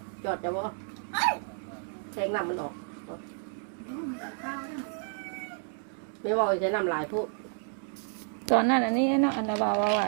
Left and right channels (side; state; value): left; silent; 57 dB below the other